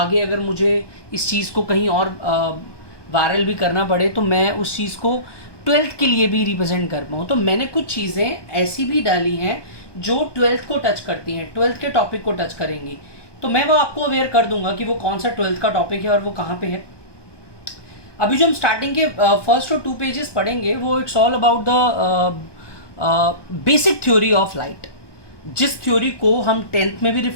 अगर मुझे इस चीज़ को कहीं और वायरल भी करना पड़े तो मैं उस चीज़ को 12th के लिए भी रिप्रेजेंट कर पाऊँ. तो मैंने कुछ चीज़ें ऐसी भी डाली हैं जो 12th को टच करती हैं, 12th के टॉपिक को टच करेंगी. तो मैं वो आपको अवेयर कर दूंगा कि वो कौन सा 12th का टॉपिक है और वो कहाँ पे है. अभी जो हम स्टार्टिंग के फर्स्ट और 2 पेजेस पढ़ेंगे वो it's all about the basic theory of light, जिस थ्योरी को हम 10th में भी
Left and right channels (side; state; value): right; late; 1.2 ms